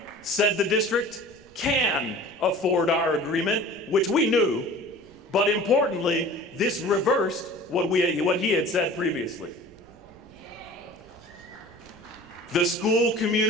said the district can afford our agreement, which we knew, but importantly, this reversed what he had said previously. The school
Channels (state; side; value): noise; right; rumble, 29 dB below the sound